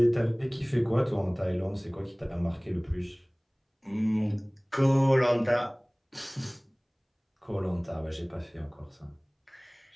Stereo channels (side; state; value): both; identical; correlation 1.00